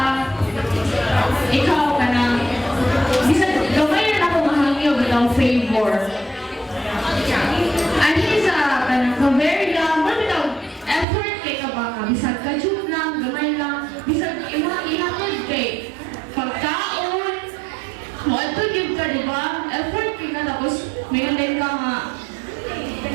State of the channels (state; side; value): drops out; left; at 11.1 s